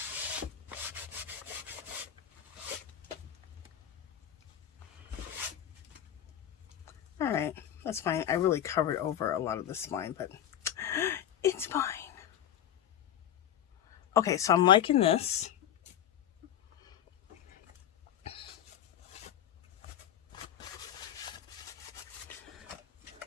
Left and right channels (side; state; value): right; quieter; 10.5 dB